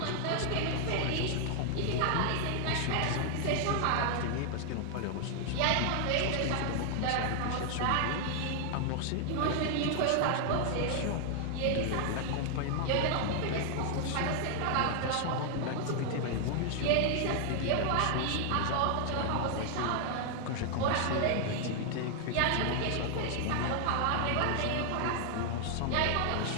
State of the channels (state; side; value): different; both; correlation 0.00